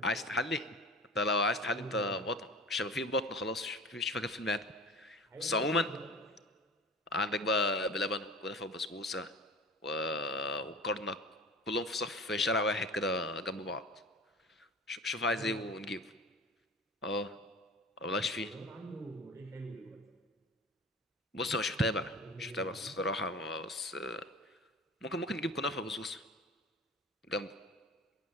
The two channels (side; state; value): both; normal; correlation 0.37